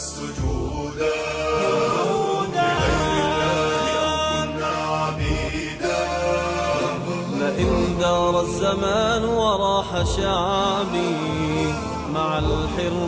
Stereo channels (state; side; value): identical; both; correlation 1.00